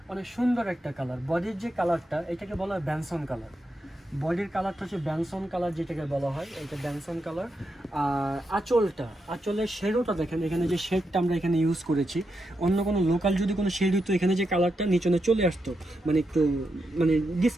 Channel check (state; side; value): normal; both; correlation 0.85